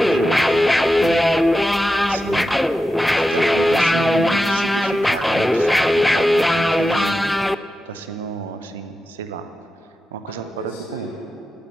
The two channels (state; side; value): normal; both; correlation 0.91